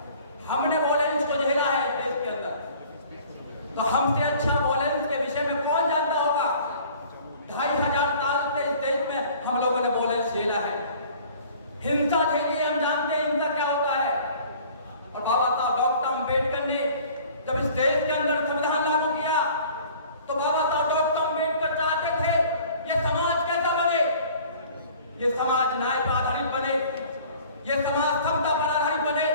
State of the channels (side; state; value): both; inverted; correlation -0.50